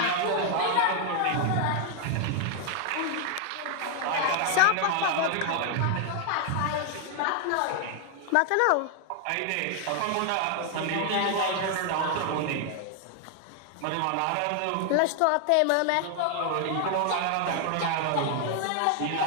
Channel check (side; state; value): both; different; correlation 0.00